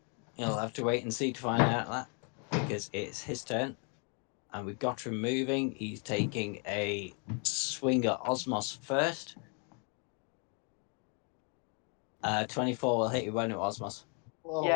you'll have to wait and see to find out that because it's his turn. And we've got him moving. He's taking a swing at Osmos first. 24 will hit you, won't it, Osmos? Oh,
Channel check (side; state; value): right; quieter; 38.4 dB